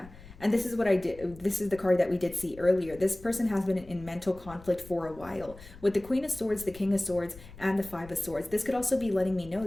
And this is what I did. This is the card that we did see earlier. This person has been in mental conflict for a while. With the Queen of Swords, the King of Swords, and the Five of Swords, this could also be letting me know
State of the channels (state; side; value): noise; left; rumble, 19 dB below the sound